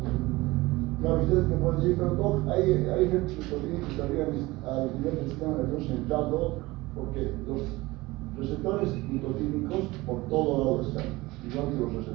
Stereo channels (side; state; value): left; quieter; 20.6 dB